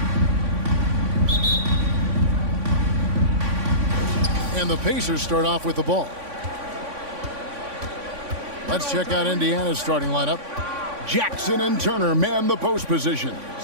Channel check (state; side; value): late; left; 3.5 ms